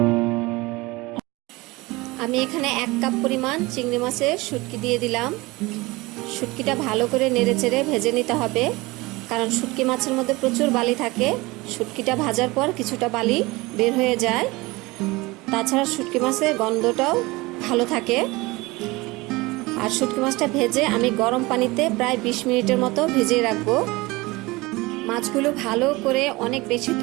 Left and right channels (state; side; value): quieter; left; 22.2 dB